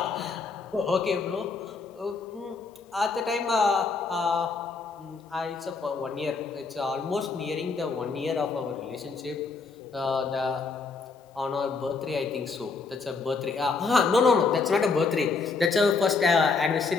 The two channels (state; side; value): quieter; right; 4.5 dB